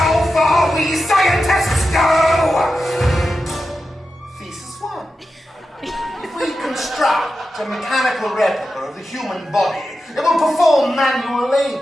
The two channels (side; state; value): both; normal; correlation 0.90